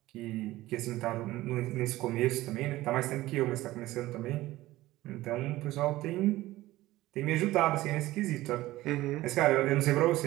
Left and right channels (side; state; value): left; quieter; 17.0 dB